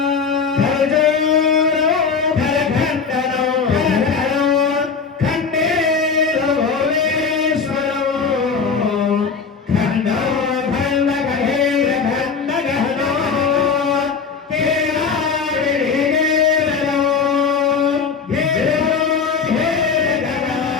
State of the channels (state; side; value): quieter; right; 5.6 dB